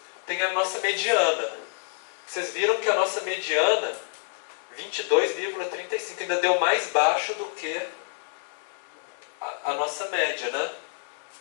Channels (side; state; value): right; silent; 57 dB below the other